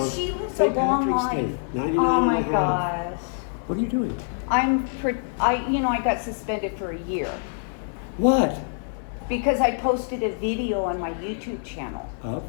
she lived a St. long Patrick's Day, life. 99 Oh my and a half. gosh. What are you doing? I got suspended for a year What? because I posted a video on my YouTube channel. Up?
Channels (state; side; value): silent; right; 62 dB below the other